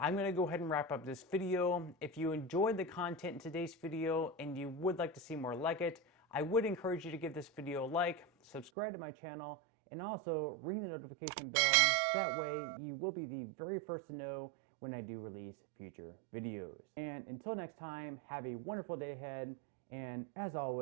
going to go ahead and wrap up this video. If you enjoyed the content in today's video and you would like to see more like it, I would encourage you to give this video a like, subscribe to my channel, and also ring the notification bell. That way you will be the very first to know when I do release future videos. And until next time, have a wonderful day ahead, and as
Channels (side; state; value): left; drops out; at 8.7 s